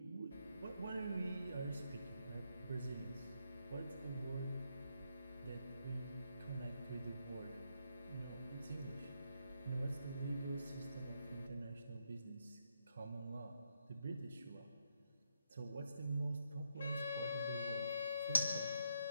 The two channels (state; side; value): inverted; both; correlation -0.78